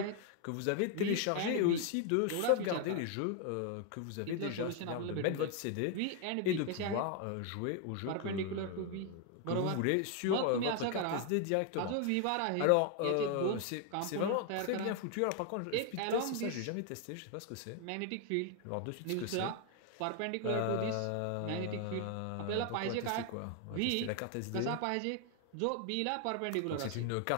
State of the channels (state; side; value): different; both; correlation 0.00